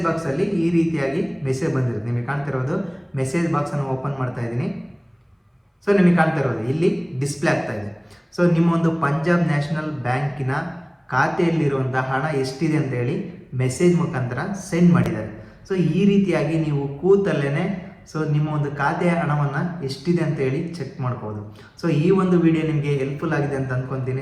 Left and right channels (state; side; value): identical; both; correlation 1.00